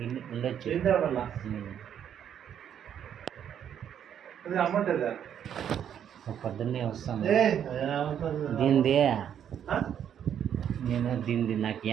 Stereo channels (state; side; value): quieter; left; 9.2 dB